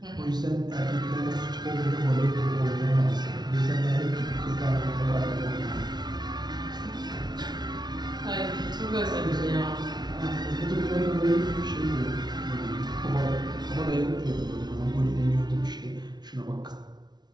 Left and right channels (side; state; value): left; late; 0.20 ms